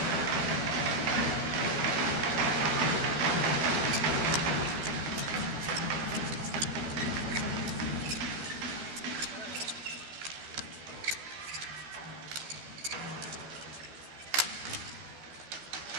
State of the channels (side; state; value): left; late; 12 ms